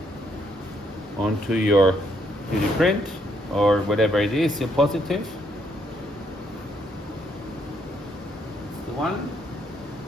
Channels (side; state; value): both; normal; correlation 0.72